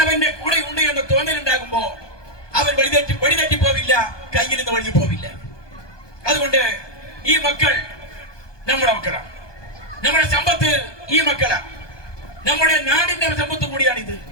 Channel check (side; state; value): right; late; 1.2 ms